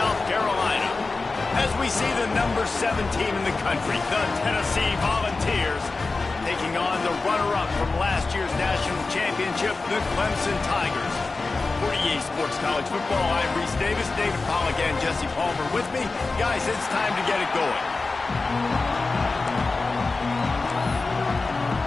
Carolina. As we see the number 7 team in the country, the Tennessee Volunteers, taking on the runner-up from last year's national championship, the Clemson Tigers. For EA Sports College Football, I'm Reese Davis, David Pollack, and Jesse Palmer with me. Guys, it's time to get it going.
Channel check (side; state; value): right; quieter; 3.7 dB